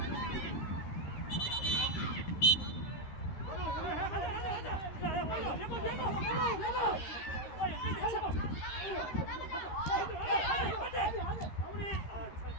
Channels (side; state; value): right; late; 13 ms